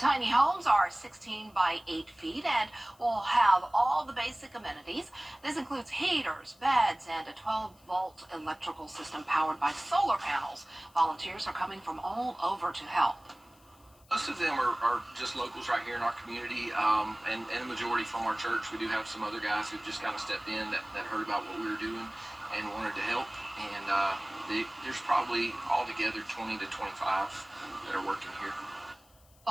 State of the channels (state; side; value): noise; left; hiss, 30 dB below the sound